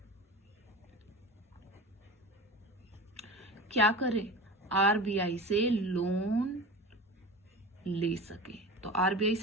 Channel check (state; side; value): normal; both; correlation 0.32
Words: क्या करे? आरबीआई से लोन ले सके। तो आरबीआई